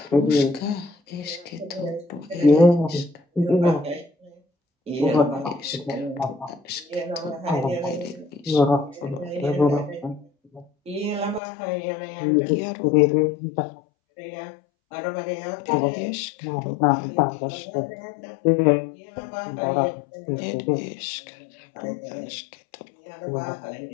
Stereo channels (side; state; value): right; drops out; at 11.4 s